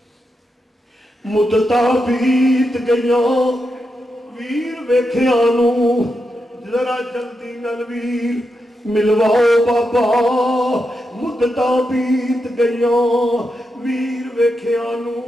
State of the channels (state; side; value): normal; both; correlation 0.86